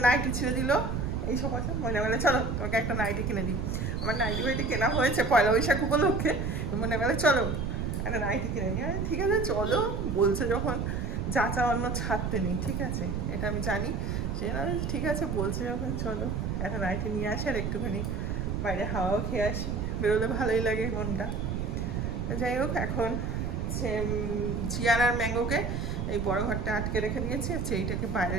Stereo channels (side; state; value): right; noise; rumble, 2 dB below the sound